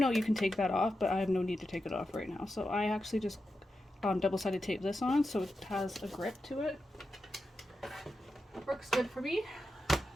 you can take that off, but I have no need to take it off right now. So I actually just double-sided tape this on so it has a grip to it. It works good for me.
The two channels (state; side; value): normal; both; correlation 0.90